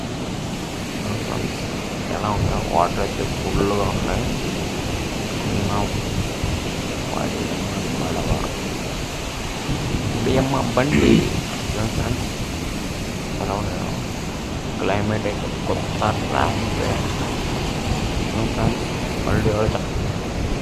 ఎలా ఉంటాయి, వాటర్ అయితే ఫుల్గా ఉన్నాయి. బియ్యమ్మ బండి ఫ్రెండ్స్, ఎలా ఉన్నాయో. క్లైమేట్ అయితే కొత్త ర్యాపిడే ఫ్రెండ్స్. మళ్ళీ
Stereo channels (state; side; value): identical; both; correlation 1.00